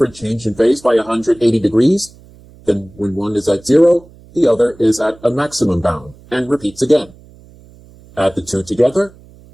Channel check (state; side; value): noise; right; hum, 24 dB below the sound